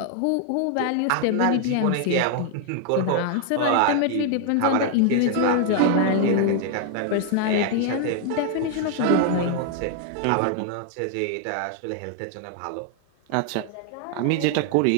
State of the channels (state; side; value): different; both; correlation 0.00